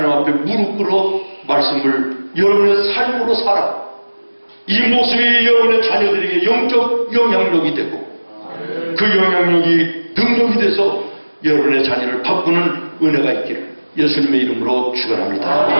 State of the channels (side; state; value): both; inverted; correlation -1.00